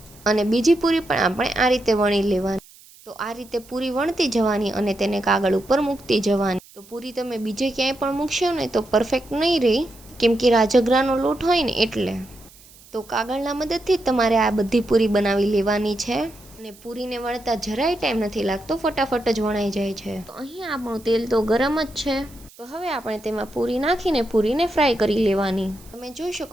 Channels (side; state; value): right; noise; hiss, 24 dB below the sound